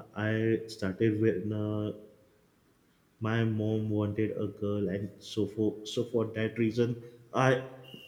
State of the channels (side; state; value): both; identical; correlation 1.00